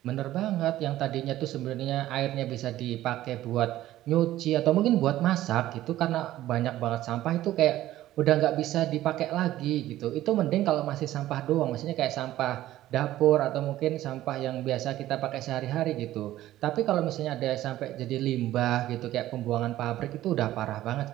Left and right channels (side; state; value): left; quieter; 14.4 dB